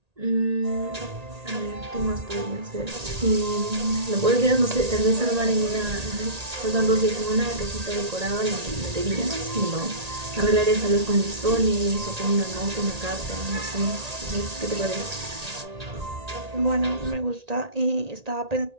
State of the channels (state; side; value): late; left; 1.8 ms